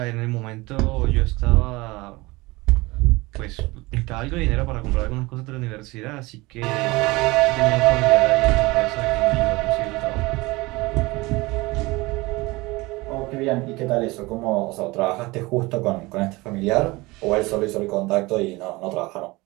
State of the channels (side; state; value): left; quieter; 22.3 dB